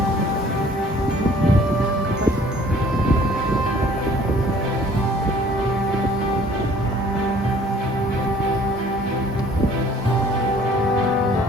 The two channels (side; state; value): both; normal; correlation 0.54